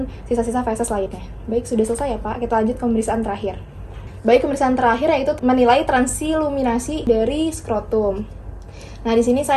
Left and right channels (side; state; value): both; identical; correlation 1.00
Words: sisa-sisa feses lainnya. Baik, sudah selesai ya Pak. Kita lanjut ke pemeriksaan terakhir. Baik, pemeriksaan terakhir yaitu menilai transiluminasi dari skrotum. Nah, di sini